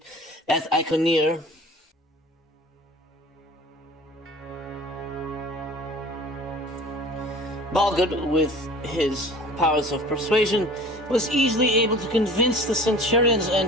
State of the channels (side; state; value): both; normal; correlation 0.44